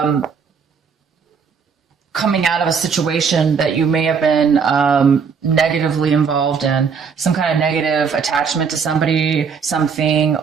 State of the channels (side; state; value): left; quieter; 6.0 dB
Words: coming out of a situation that you may have been negatively involved in, some kind of negative attachment to somebody, something,